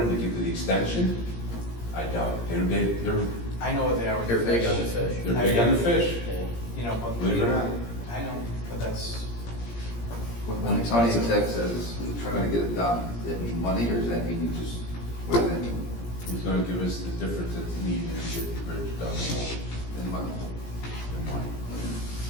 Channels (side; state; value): right; late; 17 ms